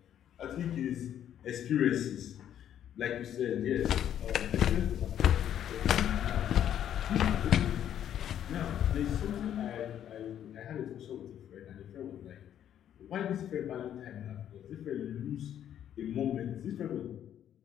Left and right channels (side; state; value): right; quieter; 10.3 dB